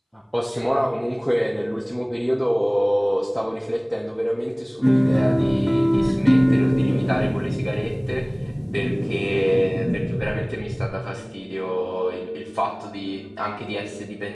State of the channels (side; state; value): both; identical; correlation 1.00